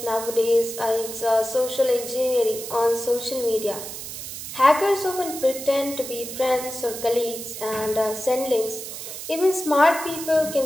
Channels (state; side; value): noise; right; hiss, 9 dB below the sound